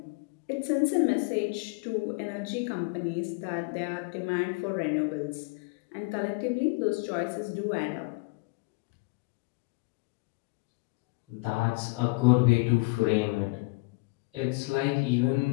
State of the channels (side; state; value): right; quieter; 27.4 dB